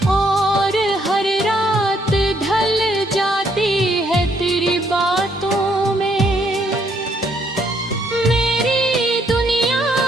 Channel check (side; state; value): both; normal; correlation 0.70